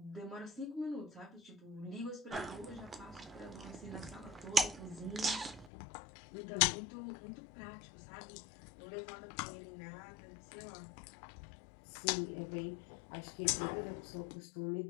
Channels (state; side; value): drops out; right; at 5.7 s